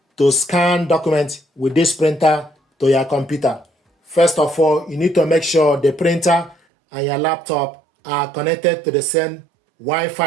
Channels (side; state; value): left; drops out; at 6.6 s